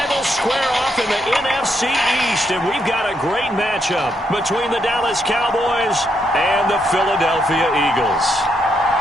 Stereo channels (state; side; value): normal; both; correlation 0.78